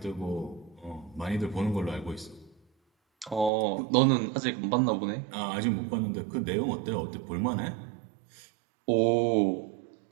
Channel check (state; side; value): drops out; left; at 3.5 s